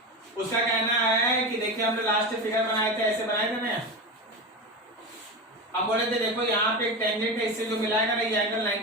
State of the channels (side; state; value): both; normal; correlation 0.22